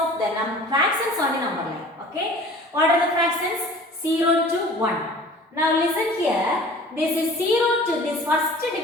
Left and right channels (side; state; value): both; normal; correlation 0.45